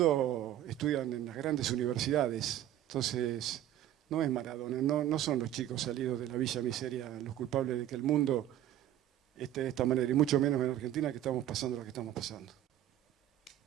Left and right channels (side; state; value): left; quieter; 12.2 dB